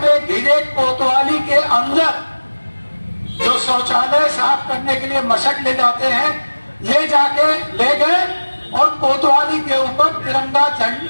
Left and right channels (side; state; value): both; inverted; correlation -1.00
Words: घिरे कोतवाली के अंदर जो शौचालय साफ करने के लिए मशक ले जाते हैं, ले गए और कोतवाली के ऊपर तिरंगा